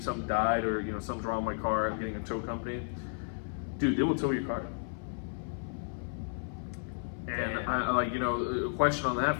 something died, or, something's wrong with my car, I'm getting a tow company, dude, they will tow your car. And a question on that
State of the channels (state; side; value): silent; right; 56 dB below the other